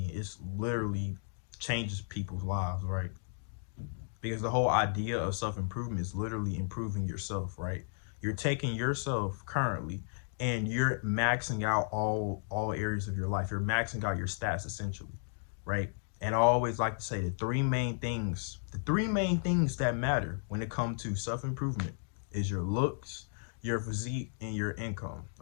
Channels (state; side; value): silent; right; digital silence